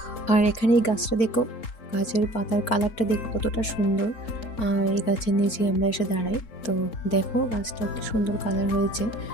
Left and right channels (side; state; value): right; late; 4.5 ms